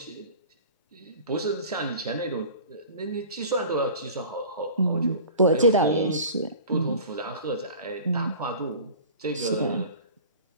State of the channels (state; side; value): inverted; both; correlation -0.41